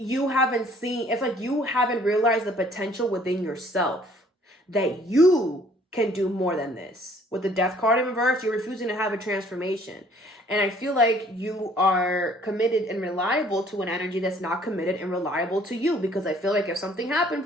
haven't seen, it's like you haven't realized the potential within yourself that you can do more than this. With the Death card in reverse, you're refusing to have a transformation. And I feel like you are committed and reliable to an energy that's not committed and reliable to you. Because I feel like if something happened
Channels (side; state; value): both; normal; correlation 0.58